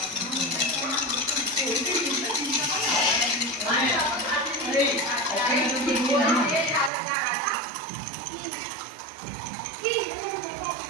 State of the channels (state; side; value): drops out; left; at 6.9 s